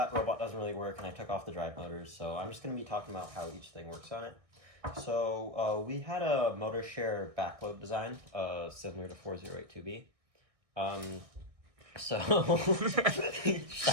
robot doesn't really work and I took off the drive motors, so I'm just going to be talking about how each thing works on it. So, we had a motor share backload design, similar to 4082B. So,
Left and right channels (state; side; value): late; left; 1.6 ms